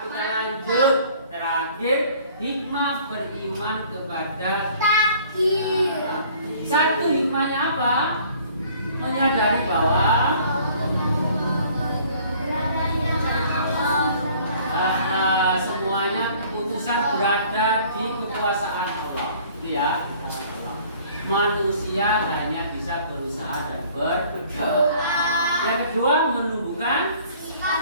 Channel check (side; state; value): both; inverted; correlation -0.54